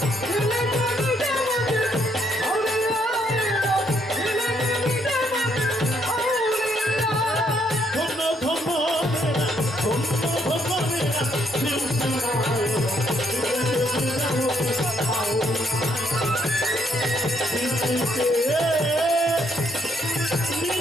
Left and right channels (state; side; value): normal; both; correlation 0.72